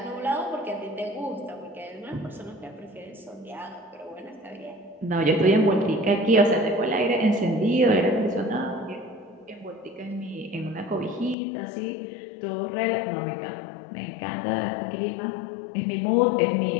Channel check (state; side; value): drops out; right; at 11.4 s